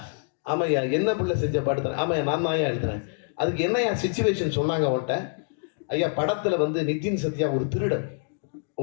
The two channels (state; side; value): silent; right; 61 dB below the other